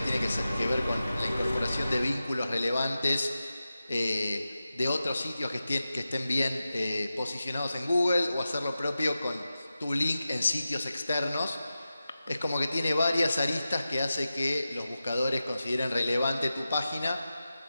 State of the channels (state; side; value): inverted; both; correlation -0.93